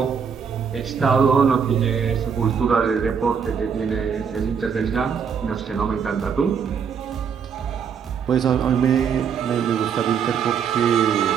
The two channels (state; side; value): quieter; left; 6.8 dB